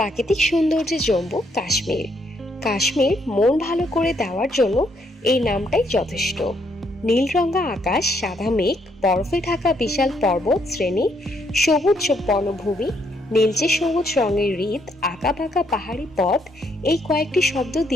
সৌন্দর্যে জম্মু কাশ্মীর। কাশ্মীর মন ভালো করে দেওয়ার জন্য এই নামটাই যথেষ্ট। নীলরঙা আকাশ, সাদা মেঘ, বরফে ঢাকা বিশাল পর্বত শ্রেণী, সবুজ বনভূমি, নীলচে সবুজ রঙের হ্রদ, আঁকাবাঁকা পাহাড়ি পথ, এই কয়েকটি শব্দ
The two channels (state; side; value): normal; both; correlation 0.73